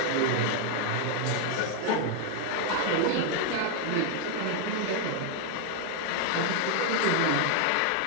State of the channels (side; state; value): both; different; correlation 0.00